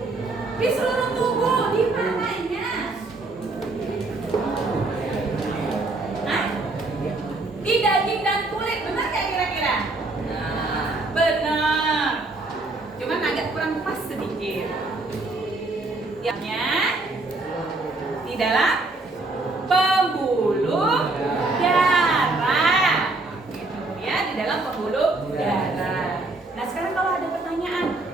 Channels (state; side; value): quieter; left; 3.1 dB